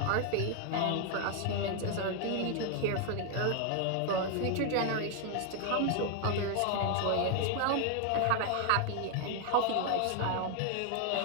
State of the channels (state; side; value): different; both; correlation 0.00